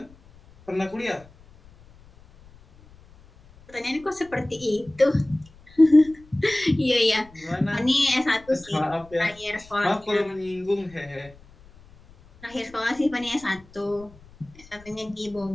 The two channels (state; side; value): noise; left; rumble, 25 dB below the sound